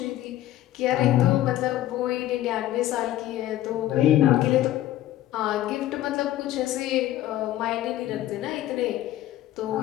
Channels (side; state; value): right; quieter; 13.9 dB